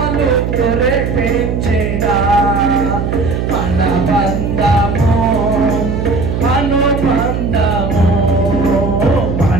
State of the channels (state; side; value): noise; right; hum, 2 dB below the sound